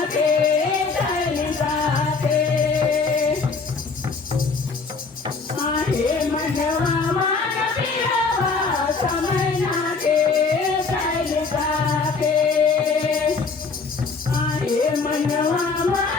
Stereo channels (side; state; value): right; quieter; 4.5 dB